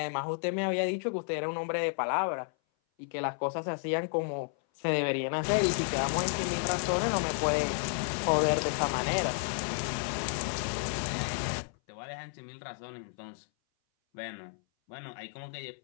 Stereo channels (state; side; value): silent; right; 56 dB below the other